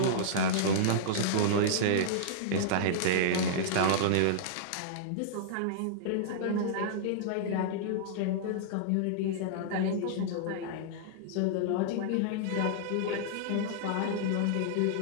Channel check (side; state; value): both; different; correlation -0.01